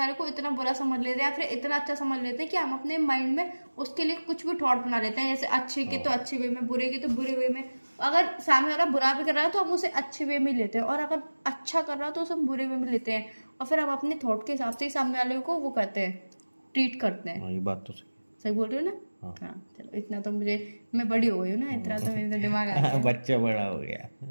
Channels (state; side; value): inverted; both; correlation -1.00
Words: को इतना बुरा समझ लेते हैं या फिर इतना अच्छा समझ लेते हैं कि हम अपने माइंड में उसके लिए कुछ भी थॉट बना लेते हैं, जैसे अच्छे के तो अच्छे वे में, बुरे के तो बुरे वे में। अगर सामने वाला बुरा भी कर रहा है तो हम उसे अच्छे वे में लेते हैं, और अगर अच्छा कर रहा है तो उसे हम बुरे वे में लेते हैं, और फिर हम अपने थॉट के हिसाब से ही सामने वाले को वो करते हैं, ट्रीट करते हैं। ये बात तो सही बोल रही हो ना? हाँ, चलो इतना तो मुझे, मैं बड़ी हो गई हूँ ना, इतना तो मेरे दिमाग आ गया। बच्चा बड़ा हो गया।